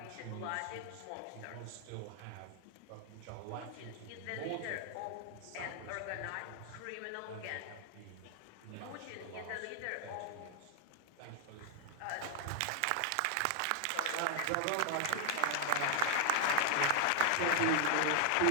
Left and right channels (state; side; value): different; both; correlation 0.00